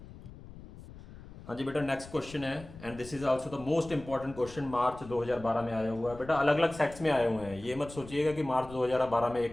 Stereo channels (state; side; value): noise; left; rumble, 17 dB below the sound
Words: हाँ जी बेटा, नेक्स्ट क्वेश्चन है, and this is also the most important question, March 2012 में आया हुआ है बेटा। अलग अलग सेट्स में आए हुए हैं, ये मत सोचिएगा कि मार्च 2012 में एक